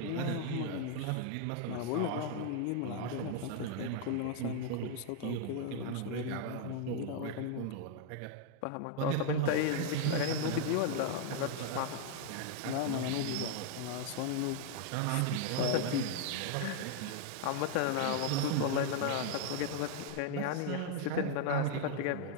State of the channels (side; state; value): both; different; correlation 0.00